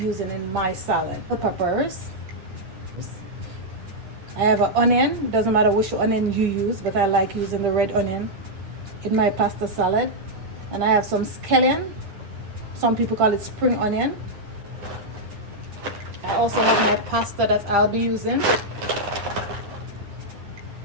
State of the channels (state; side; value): late; left; 9.6 ms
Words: in my salad. The peppers. I have an onion. It doesn't matter which onion you use, but I like using the red onion in my pasta salad. And I have some scallion. Some people call it spring onion. I also have my pasta that I'll be using.